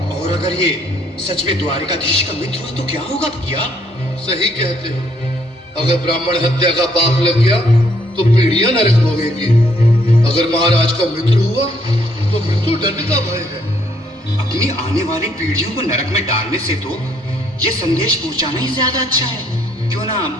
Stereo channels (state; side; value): normal; both; correlation 0.68